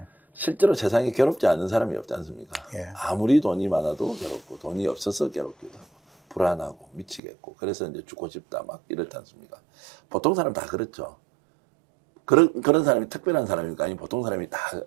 실제로 세상에 괴롭지 않은 사람이 없지 않습니까? 예. 아무리 돈이 많아도 괴롭고 돈이 없어서 괴롭기도 하고 불안하고 미치겠고 그래서 이제 죽고 싶다 막 이렇지 않습니까? 보통 사람 다 그렇죠. 그런 사람이 특별한 사람일까? 아니 보통 사람이 다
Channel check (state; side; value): drops out; left; at 7.2 s